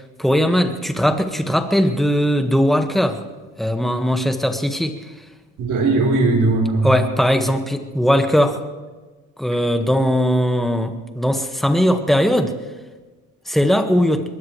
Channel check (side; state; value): both; normal; correlation 0.82